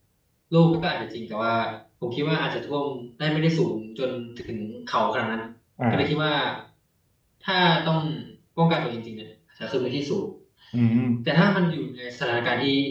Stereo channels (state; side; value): identical; both; correlation 1.00